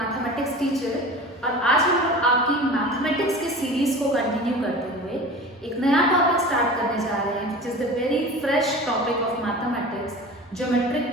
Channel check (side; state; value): both; normal; correlation 0.36